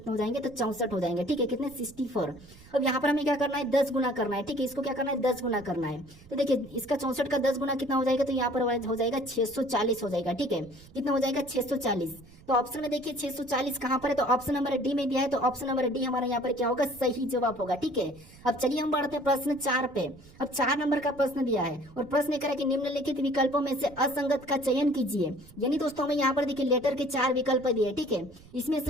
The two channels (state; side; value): noise; right; rumble, 22 dB below the sound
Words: हो जाएंगे तो 64 हो जाएंगे, ठीक है। कितने 64। अब यहाँ पर हमें क्या करना है 10 गुना करना है, ठीक है। इसको क्या करना है 10 गुना करना है। तो देखिए इसका 64 का 10 गुना कितना हो जाएगा तो यहाँ पर हो जाएगा 640 हो जाएगा, ठीक है। कितना हो जाएगा 640। तो ऑप्शन में देखिए 640 कहां पर है तो ऑप्शन नंबर डी में दिया है, तो ऑप्शन नंबर डी हमारा यहाँ पर क्या होगा सही जवाब होगा, ठीक है। अब चलिए हम बढ़ते हैं प्रश्न 4 पे। अब 4 नंबर का प्रश्न दिया है और प्रश्न कह रहा है कि निम्नलिखित विकल्पों में से असंगत का चयन कीजिए। यानी दोस्तों हमें यहाँ पर देखिए लेटर के 4 विकल्प दिए, ठीक है। इसमें से